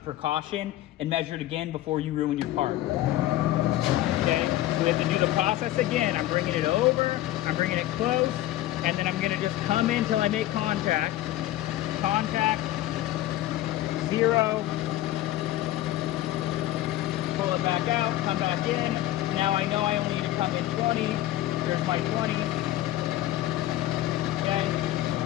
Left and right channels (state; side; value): quieter; right; 14.7 dB